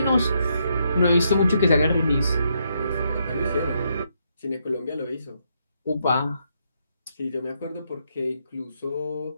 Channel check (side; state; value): both; inverted; correlation -0.77